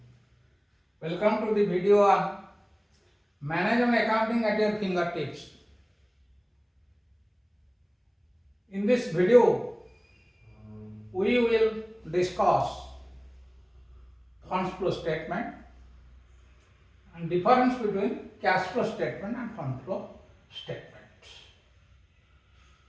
welcome to the video on Management Accounting at your fingertips. In this video, we will discuss funds flow statement and difference between cash flow statement and fund flow statement.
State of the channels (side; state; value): both; identical; correlation 1.00